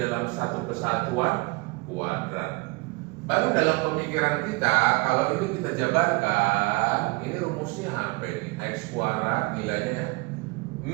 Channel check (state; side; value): quieter; left; 26.0 dB